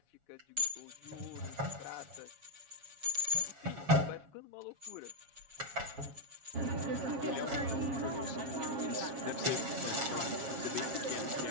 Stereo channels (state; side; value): late; left; 7.2 ms